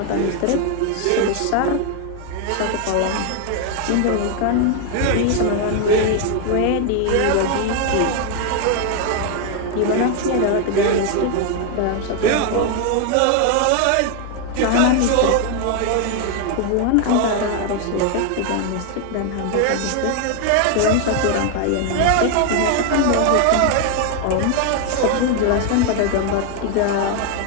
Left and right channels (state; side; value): different; both; correlation 0.01